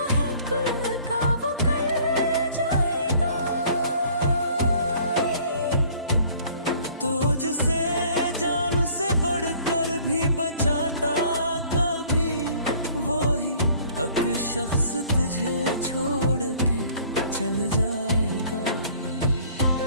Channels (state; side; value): inverted; both; correlation -0.54